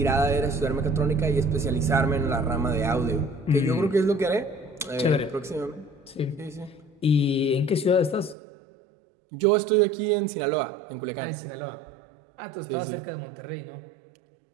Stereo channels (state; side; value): drops out; left; at 8.3 s